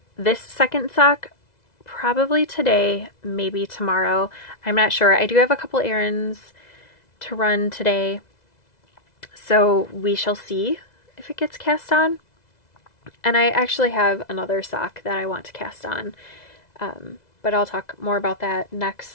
this second sock probably today, maybe tomorrow. I'm not sure. I do have a couple errands to run today, so we shall see if it gets cast on. And I actually have another sock that I want to cast on, but I'll talk more about that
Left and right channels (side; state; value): right; late; 2.0 ms